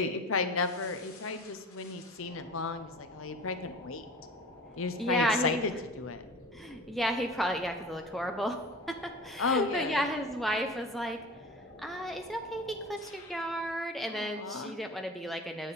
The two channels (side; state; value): both; normal; correlation 0.37